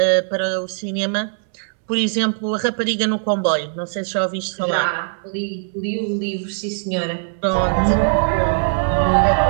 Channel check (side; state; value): left; silent; 65 dB below the other